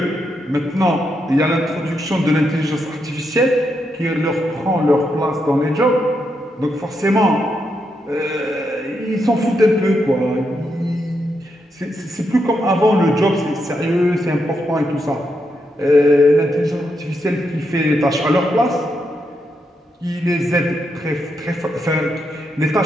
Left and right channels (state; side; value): normal; both; correlation 0.82